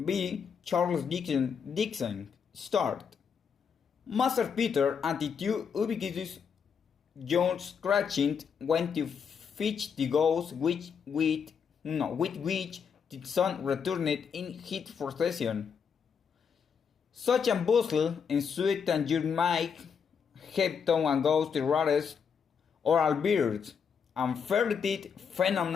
Charles Dixon. Start. Master Peter and the two ubiquitous John Scratching went to fetch the ghost with which the sun returned in his procession. Such a bustle ensued that you might have thought a ghost the rarest oral birds and ferreted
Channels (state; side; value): quieter; right; 6.7 dB